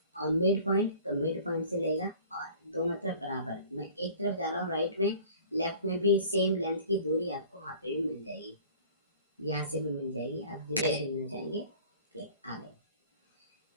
और मिड पॉइंट, तो मिड पॉइंट से लेगा और दोनों तरफ बराबर। मैं एक तरफ जा रहा हूँ राइट में, लेफ्ट में भी सेम लेंथ की दूरी आपको वहाँ पे भी मिल जाएगी, यहाँ से भी मिल जाएगी। आप जिधर से मिलना चाहेंगे क्लिक आ गए।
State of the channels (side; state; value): both; inverted; correlation -0.47